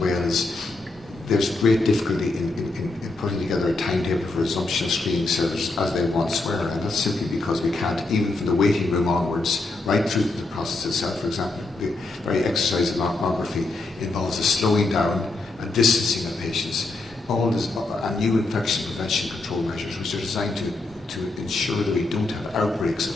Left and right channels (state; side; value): quieter; right; 3.2 dB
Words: Wales, there's great difficulty in putting together a timetable for resumption of screening service as they once were, and that's simply because we can't, even from the waiting room onwards, right through the process itself. For example, the very exercise of mammography involves a slowing down and distancing of patients. All this, and new infection prevention control measures, which are designed to ensure that we don't have outbreaks of